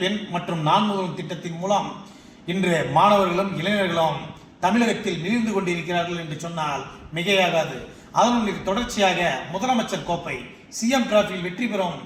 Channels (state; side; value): identical; both; correlation 1.00